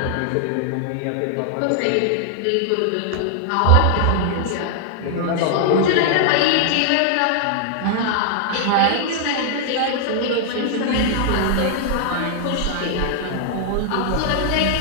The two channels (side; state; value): both; different; correlation -0.01